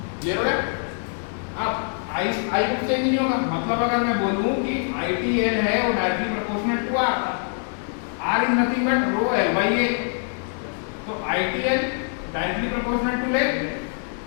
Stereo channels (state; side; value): silent; right; 57 dB below the other